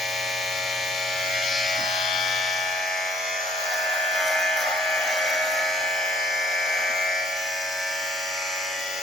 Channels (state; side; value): normal; both; correlation 0.61